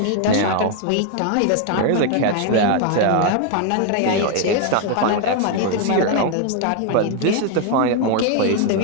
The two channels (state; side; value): different; both; correlation 0.01